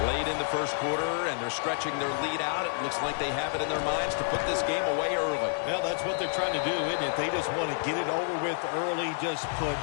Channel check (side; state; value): right; silent; digital silence